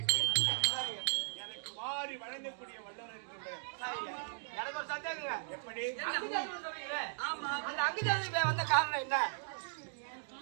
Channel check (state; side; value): silent; left; digital silence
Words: எனக்கு வாரி வழங்கக்கூடிய வல்லவர் என்று எனக்கு ஒரு சந்தேகங்க. எப்படி அந்த அங்குதேசி வந்த காரணம் என்ன?